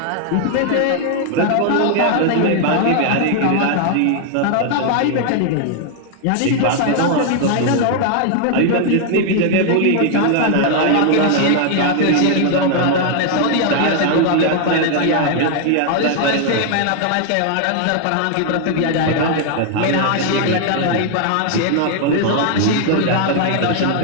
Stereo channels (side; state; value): both; different; correlation 0.00